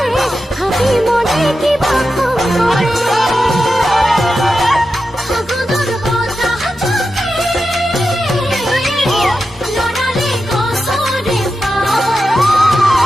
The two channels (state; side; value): normal; both; correlation 0.90